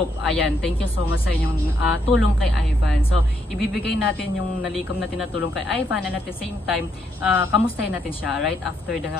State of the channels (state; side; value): normal; both; correlation 0.75